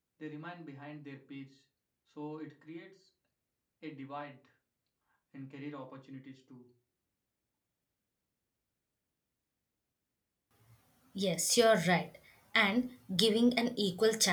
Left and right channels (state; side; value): identical; both; correlation 1.00